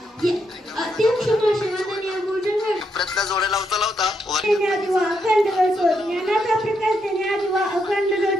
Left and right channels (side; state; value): both; normal; correlation 0.79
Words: जोड्या लावता लावता